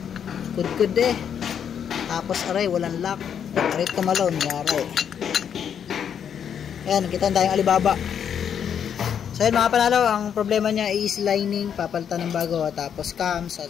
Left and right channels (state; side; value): quieter; right; 8.2 dB